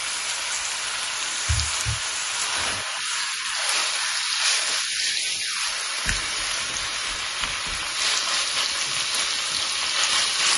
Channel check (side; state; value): both; identical; correlation 1.00